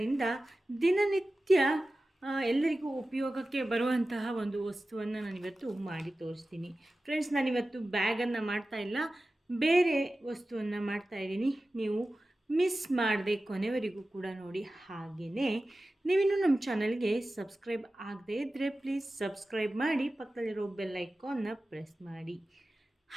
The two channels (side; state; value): both; normal; correlation 0.95